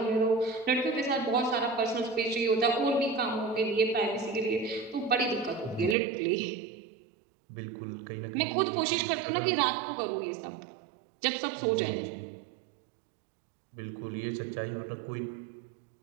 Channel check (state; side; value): drops out; left; at 6.0 s